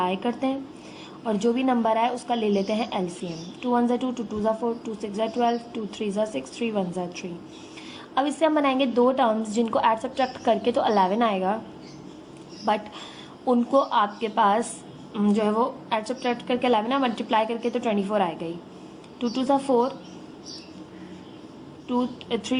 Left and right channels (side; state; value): both; identical; correlation 1.00